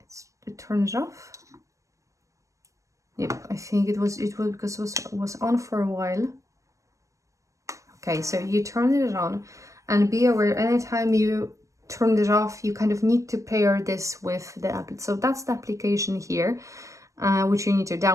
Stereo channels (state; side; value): late; left; 0.15 ms